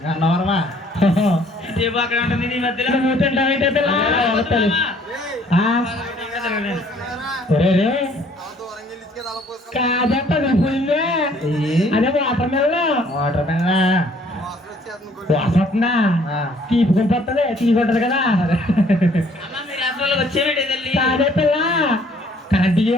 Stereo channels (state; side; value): normal; both; correlation 0.60